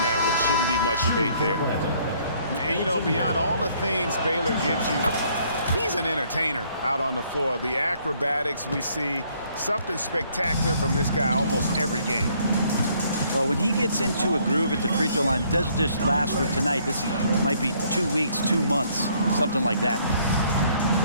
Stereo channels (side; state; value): both; inverted; correlation -0.65